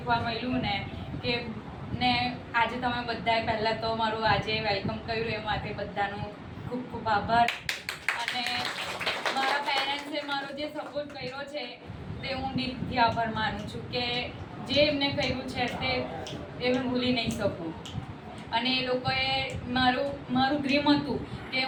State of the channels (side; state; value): both; identical; correlation 1.00